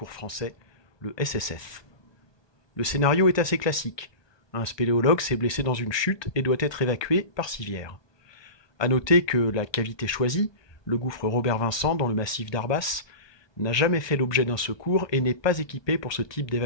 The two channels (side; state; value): right; late; 1.2 ms